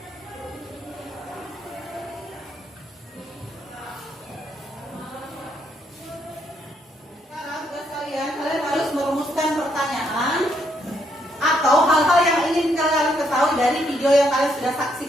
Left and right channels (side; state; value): both; normal; correlation 0.74